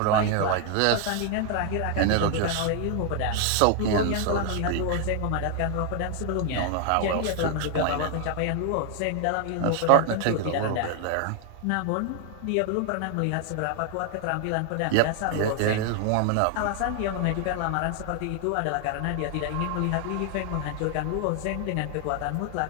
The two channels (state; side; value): different; both; correlation 0.00